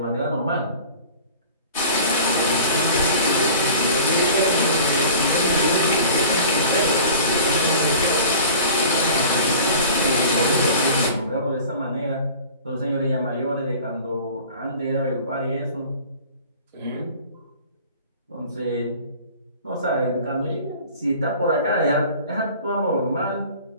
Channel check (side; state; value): both; inverted; correlation -0.42